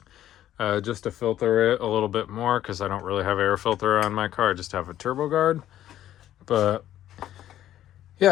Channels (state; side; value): quieter; right; 12.2 dB